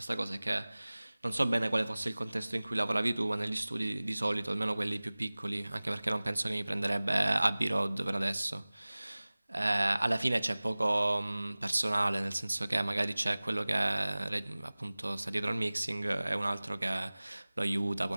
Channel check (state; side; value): inverted; both; correlation -0.99